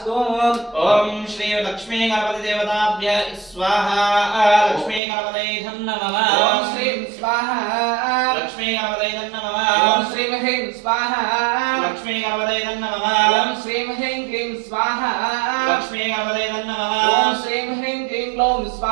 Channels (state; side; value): drops out; left; at 5.0 s